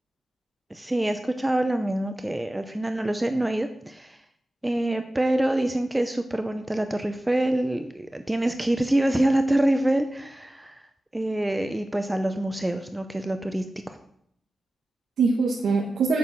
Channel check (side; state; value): both; normal; correlation 0.95